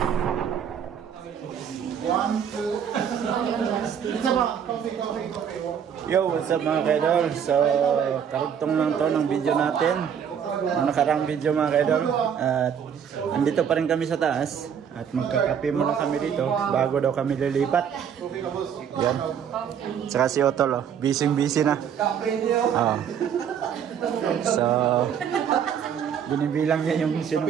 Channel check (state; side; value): quieter; left; 8.1 dB